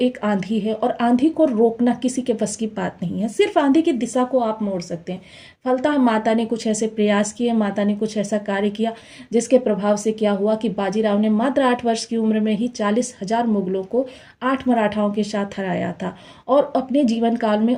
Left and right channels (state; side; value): identical; both; correlation 1.00